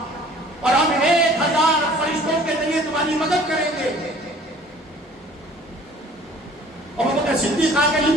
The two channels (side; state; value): both; normal; correlation 0.51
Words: اور ہم 1000 فرشتوں کے ذریعے تمہاری مدد کریں گے. ابوبکر صدیق آگے